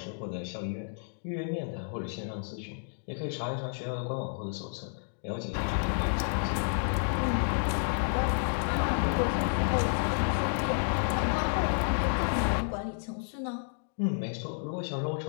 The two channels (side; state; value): right; silent; digital silence